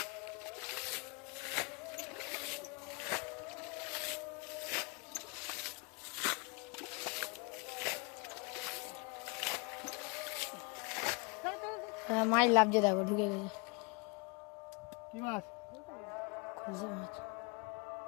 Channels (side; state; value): right; quieter; 29.7 dB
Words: মাছ লাগছে দেখো ঢুকে গেছে কি মাছ? খুঁজে মাছ